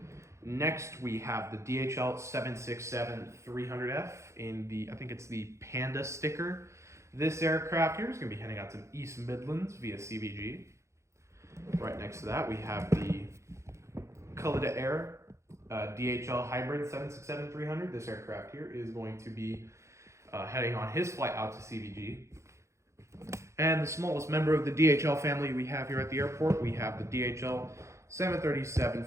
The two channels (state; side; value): late; left; 0.14 ms